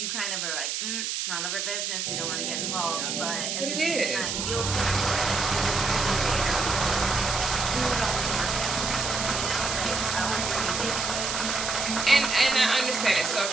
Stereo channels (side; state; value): right; noise; hiss, 2 dB below the sound